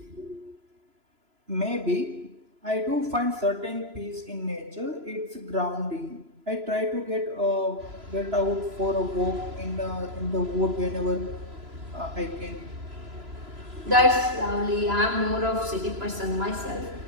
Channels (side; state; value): left; late; 3.0 ms